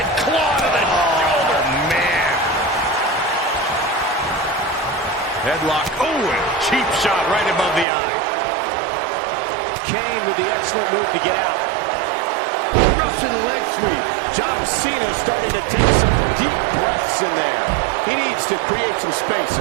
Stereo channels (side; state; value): left; drops out; at 7.9 s